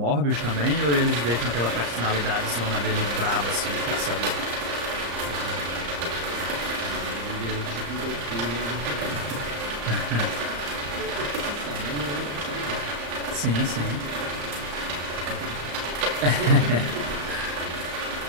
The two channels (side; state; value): left; late; 34 ms